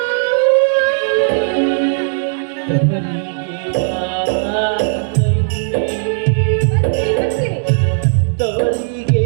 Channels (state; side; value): silent; left; digital silence